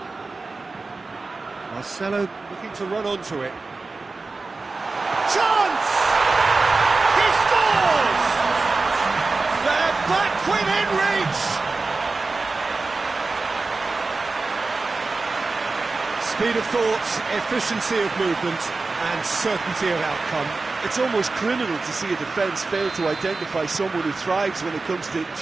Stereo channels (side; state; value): left; quieter; 3.8 dB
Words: Marcelo looking to run onto it. Chance! He scores! They're back within reach! Speed of thought, efficiency of movement, and certainty of outcome. It's almost criminal to see a defence fail to identify someone who thrives when it comes to